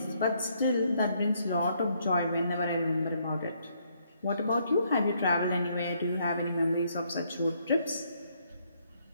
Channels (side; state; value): both; inverted; correlation -0.71